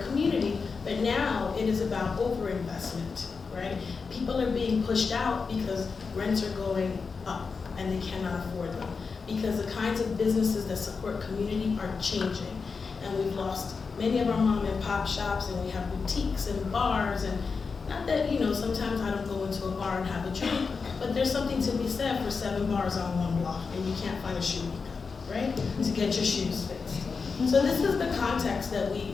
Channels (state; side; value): quieter; right; 5.0 dB